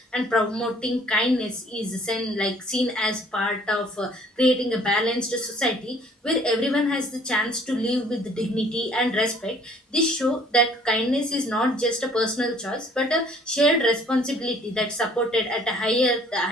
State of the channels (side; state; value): both; normal; correlation 0.57